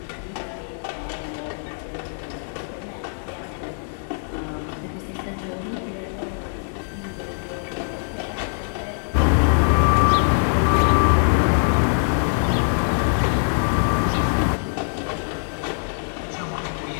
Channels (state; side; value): silent; right; digital silence